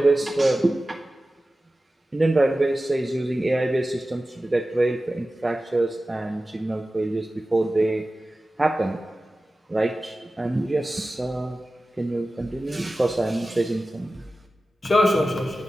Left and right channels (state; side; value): normal; both; correlation 0.95